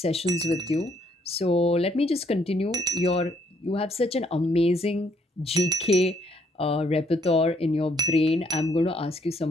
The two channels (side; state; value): both; normal; correlation 0.68